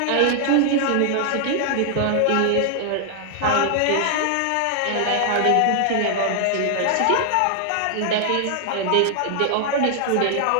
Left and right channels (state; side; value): different; both; correlation 0.00